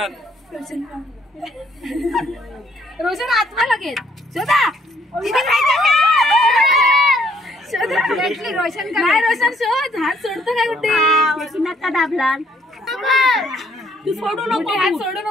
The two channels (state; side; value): normal; both; correlation 0.66